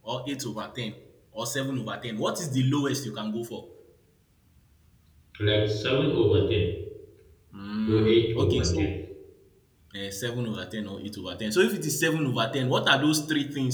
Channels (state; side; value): identical; both; correlation 1.00